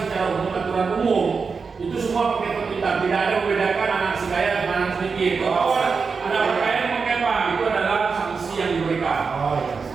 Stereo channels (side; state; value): left; quieter; 5.1 dB